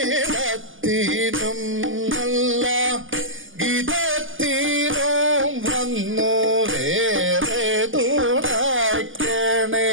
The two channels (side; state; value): left; late; 0.58 ms